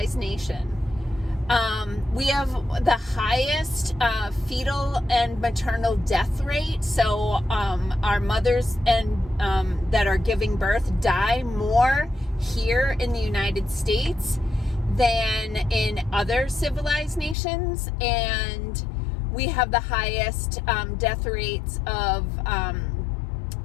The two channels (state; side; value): drops out; right; at 17.4 s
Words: nation. We have the highest fetal and maternal death rate. So our mothers and that are giving birth die more here in the United States than in other civilized nations. And we have the highest death rates of